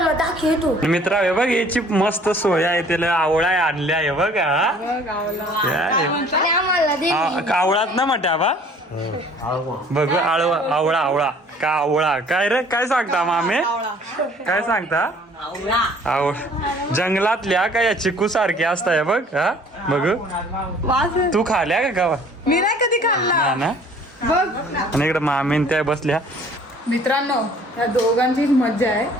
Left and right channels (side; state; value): both; normal; correlation 0.54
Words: दाखवतो. मित्र हे बघ याची मस्त सोय आहे. त्याला आवळा आणल्या आहे बघ. आणि आम्हाला दे. आवळात ना म्हट्या बा बघ. आवळा आवळा का आवळा काय रे काय सांगता मामे काय सांगता. जंगलातल्या का या चिकू सारख्या असताय बघ. हा बघ तू खाल्या का गावा. मी नाही कधी खाल्ला ना. बघ. आणि इकडे मामीन त्या बसल्या. मित्रांनो या दोघांचीच मज्जा आहे.